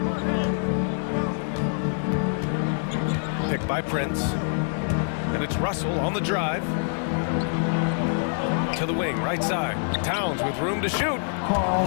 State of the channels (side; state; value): right; silent; digital silence